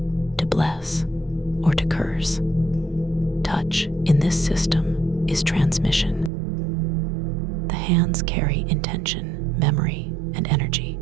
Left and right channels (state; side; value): drops out; left; at 6.3 s